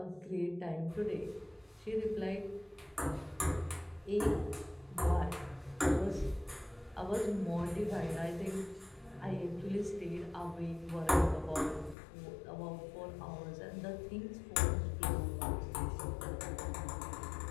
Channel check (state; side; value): drops out; right; at 12.0 s